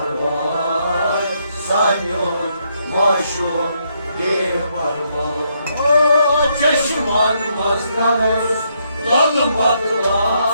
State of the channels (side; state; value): both; inverted; correlation -0.75